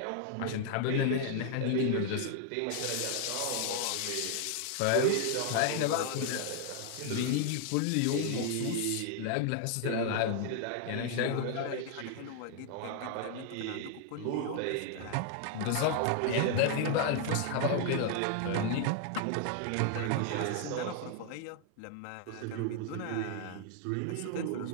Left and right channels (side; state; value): both; different; correlation 0.00